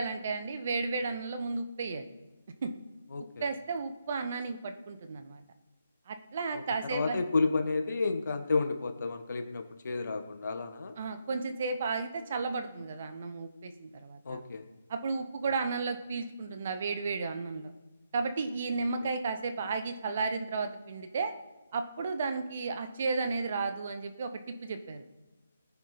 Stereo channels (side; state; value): both; inverted; correlation -0.79